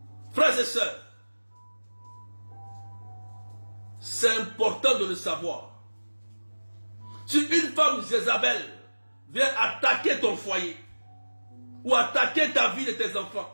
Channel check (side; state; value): both; inverted; correlation -1.00